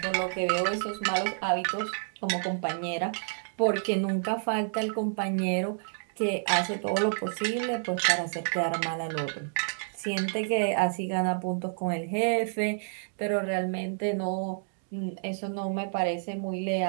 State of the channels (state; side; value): silent; left; digital silence